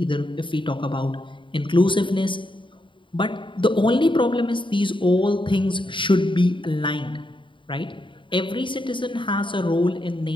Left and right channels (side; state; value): right; late; 0.24 ms